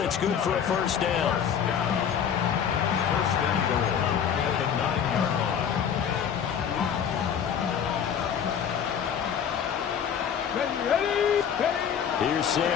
it's good for a 1st down. 1st and goal at the 9-yard line. Ready. Here's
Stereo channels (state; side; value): quieter; right; 8.1 dB